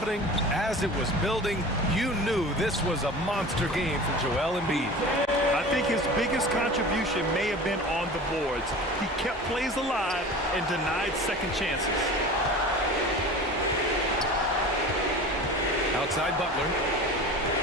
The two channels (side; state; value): both; normal; correlation 0.36